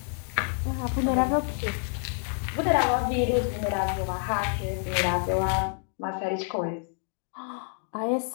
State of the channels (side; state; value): right; silent; 57 dB below the other